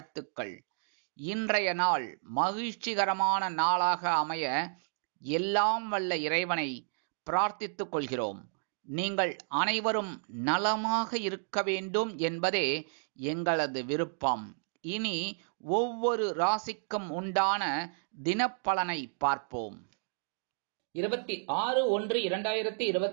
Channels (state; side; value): silent; left; digital silence